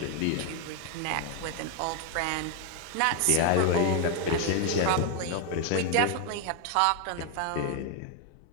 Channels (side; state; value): both; different; correlation 0.01